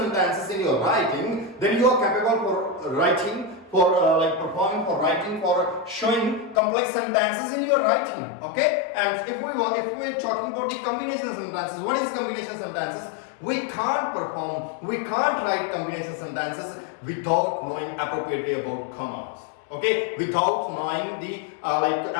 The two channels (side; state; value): right; drops out; at 6.6 s